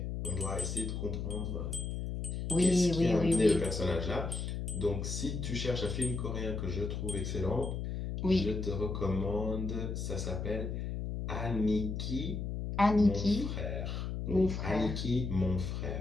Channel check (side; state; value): left; noise; hum, 3 dB below the sound